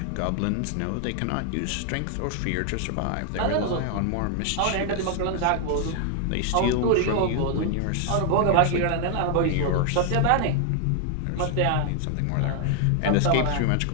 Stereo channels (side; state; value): both; different; correlation 0.00